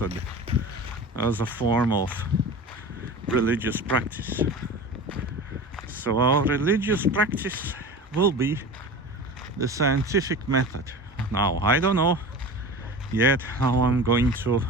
as a form of religious practice. So our religious practice will be the scientific method. Now, I don't know yet how I'm going to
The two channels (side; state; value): both; normal; correlation 0.34